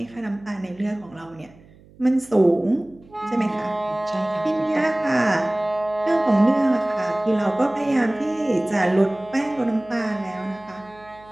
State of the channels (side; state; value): right; noise; hum, 26 dB below the sound